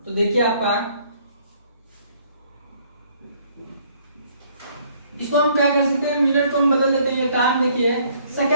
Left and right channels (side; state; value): both; inverted; correlation -0.62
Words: तो देखिए आपका इसको हम क्या कर सकते हैं, मिनट को हम बदल देते हैं, टाइम देखिए